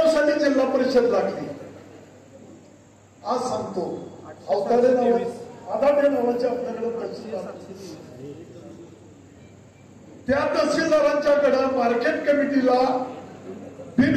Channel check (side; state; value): both; identical; correlation 1.00